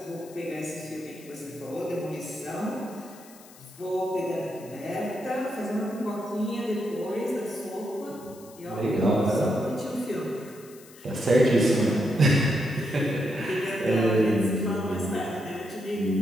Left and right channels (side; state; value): left; noise; hiss, 22 dB below the sound